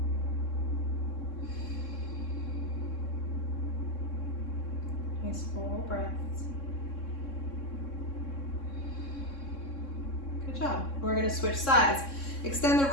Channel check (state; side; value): late; right; 3.6 ms